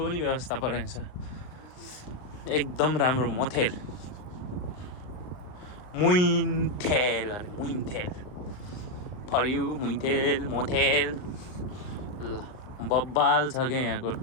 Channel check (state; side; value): late; right; 39 ms